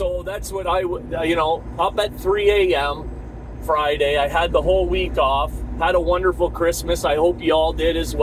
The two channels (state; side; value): identical; both; correlation 1.00